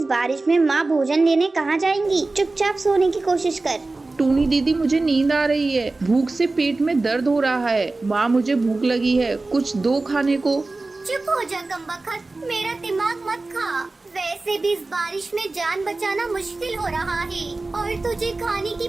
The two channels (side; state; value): left; quieter; 3.3 dB